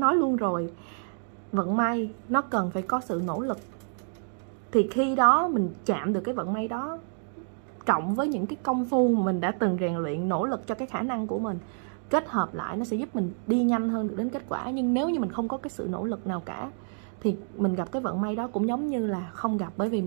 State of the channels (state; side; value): silent; left; 59 dB below the other